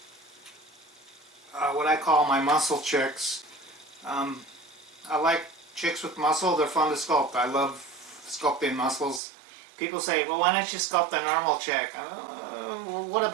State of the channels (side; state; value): left; drops out; at 9.2 s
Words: what I call my muscle chicks. I like chicks with muscle. They're fun to sculpt. I love sculpting muscles. People say, well, why don't you sculpt a normal chick? Well, what